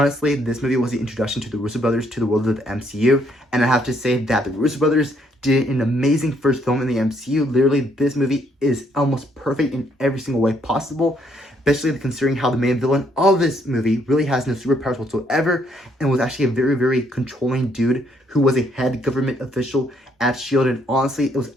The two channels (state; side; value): normal; both; correlation 0.70